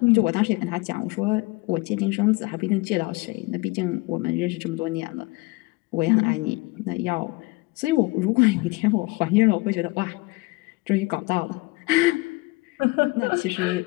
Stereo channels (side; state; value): right; quieter; 24.5 dB